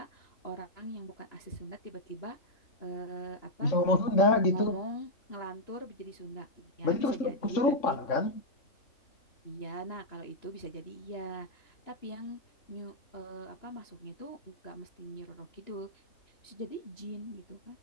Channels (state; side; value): late; right; 3.6 ms